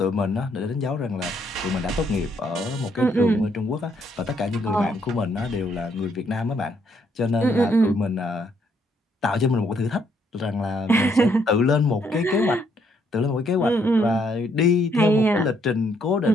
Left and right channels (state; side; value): normal; both; correlation 0.71